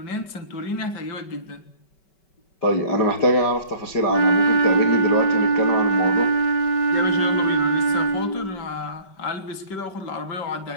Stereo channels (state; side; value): late; right; 5.3 ms